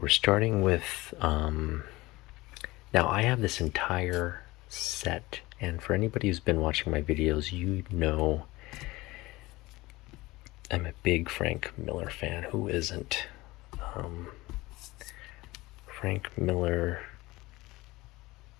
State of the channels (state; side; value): quieter; right; 20.4 dB